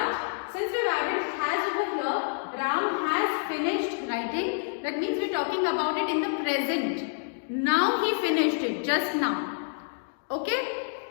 since we have added has over here, Ram has finished writing. That means we are talking about it in the present. Now he finished it, just now. Okay?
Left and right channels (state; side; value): silent; right; digital silence